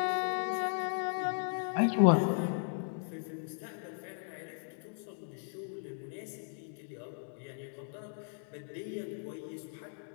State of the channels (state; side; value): silent; right; digital silence